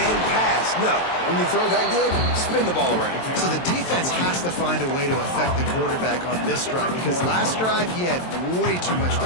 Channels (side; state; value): right; late; 23 ms